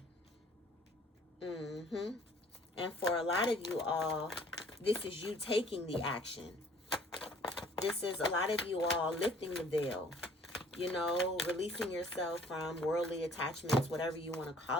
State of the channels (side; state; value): both; normal; correlation 0.56